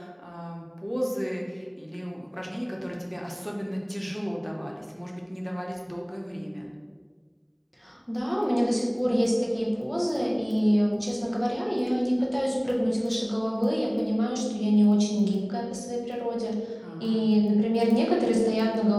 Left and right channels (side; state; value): both; identical; correlation 1.00